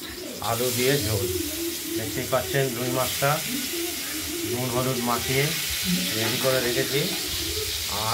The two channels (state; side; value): identical; both; correlation 1.00